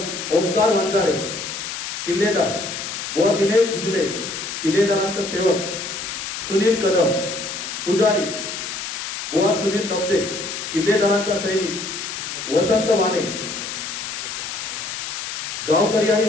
ओंकार वंजारे. किल्लेदार बुवा दिनेश झिंगणे. किल्लेदारांचा सेवक सुनील कदम. पुजारी बुवा सुनील लब्दे. किल्लेदारांचा सैनिक वसंत वाणे. गावकरी आणि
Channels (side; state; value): left; noise; hiss, 6 dB below the sound